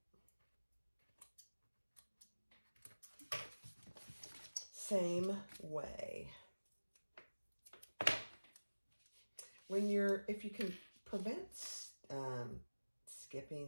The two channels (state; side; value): inverted; both; correlation -1.00